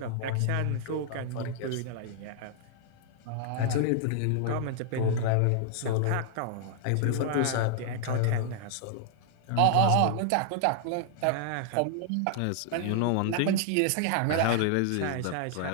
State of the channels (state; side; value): different; both; correlation -0.01